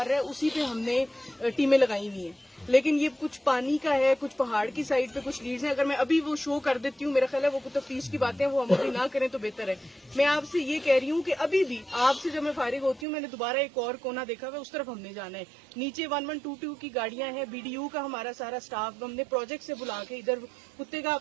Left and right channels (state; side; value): drops out; left; at 13.1 s